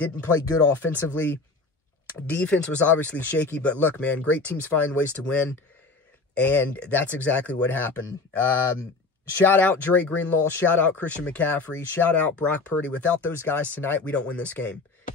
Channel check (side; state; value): right; quieter; 3.8 dB